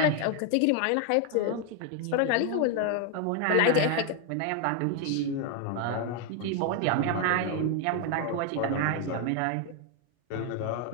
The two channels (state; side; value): different; both; correlation 0.01